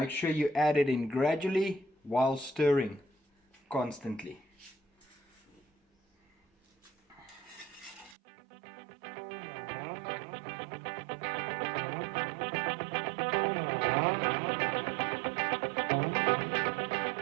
sure you add it in gradually while stirring constantly.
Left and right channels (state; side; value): drops out; left; at 8.2 s